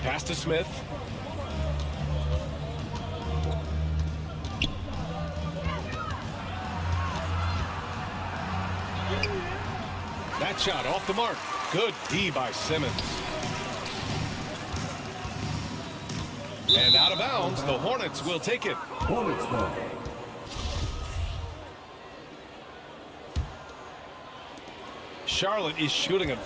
Pass to Smith. That shot off the mark. Good D by Simmons. And out of bounds, the Hornets will take it. Hornets ball. Charlotte is shooting a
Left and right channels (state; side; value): identical; both; correlation 1.00